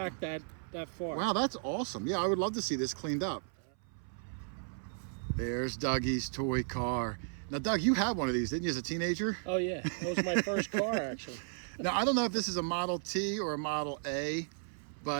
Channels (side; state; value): left; silent; 55 dB below the other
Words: that far. Wow, that's awesome. Yeah, I would love to see this cleaned up. There's Dougie's toy car. Now, Doug, you had one of these, didn't you, as a teenager? Oh yeah, that was my first car actually. Now, I don't know if this is a Model T or a Model A,